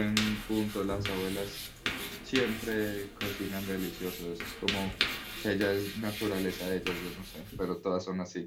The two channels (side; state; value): both; identical; correlation 1.00